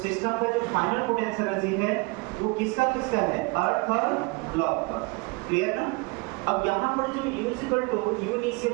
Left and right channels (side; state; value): left; quieter; 27.5 dB